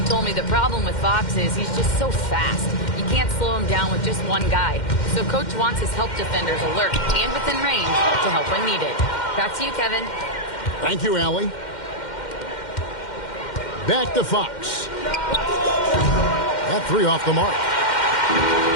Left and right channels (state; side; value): late; right; 2.1 ms